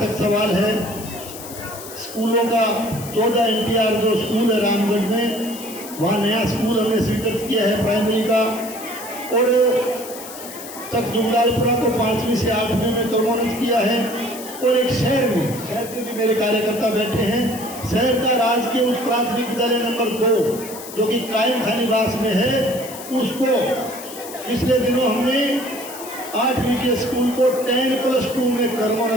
सवाल है, स्कूलों का 14 NTR जो स्कूल है रामगढ़ में, वहाँ नया स्कूल हमने स्वीकृत किया है प्राइमरी का। और तक जुगलालपुरा को 5वीं से 8वीं में क्रमोन्नत किया है। और एक शहर से भी मेरे कार्यकर्ता बैठे हैं, शहर का राजकीय उच्च प्राथमिक विद्यालय नंबर 2 जो कि कायम खानीवास में है, उसको पिछले दिनों हमने 8वीं के स्कूल को 10+2 में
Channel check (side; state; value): left; noise; hiss, 13 dB below the sound